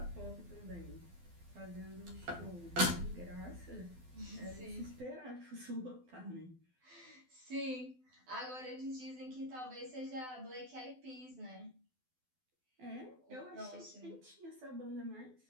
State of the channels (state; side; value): late; left; 12 ms